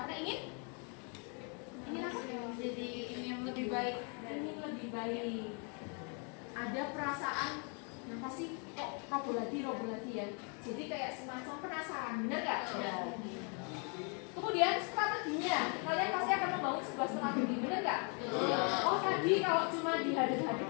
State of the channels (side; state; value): right; quieter; 37.3 dB